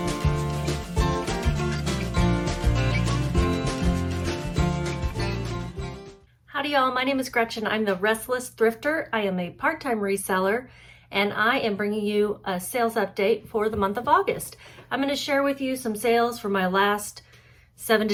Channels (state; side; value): identical; both; correlation 1.00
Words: Howdy y'all, my name is Gretchen. I'm the Restless Thrifter. I am a part-time reseller and I am bringing you a sales update for the month of August. I'm going to share with you some sales for my last 7